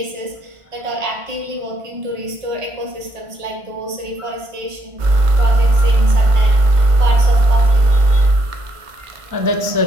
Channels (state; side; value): late; left; 1.5 ms